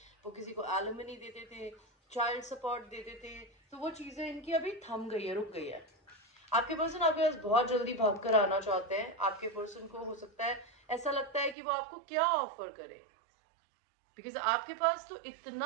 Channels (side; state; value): left; drops out; at 11.6 s